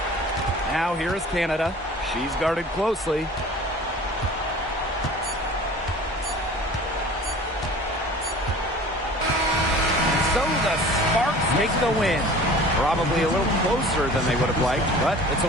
Now here is Canada. She's guarded closely. So the Sparks take the win. Probably a little closer than they would have liked, but it's a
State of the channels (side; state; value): both; normal; correlation 0.43